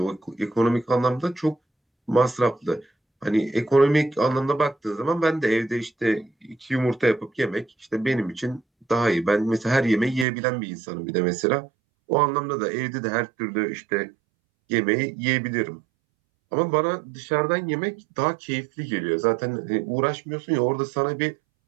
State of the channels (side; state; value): left; drops out; at 10.2 s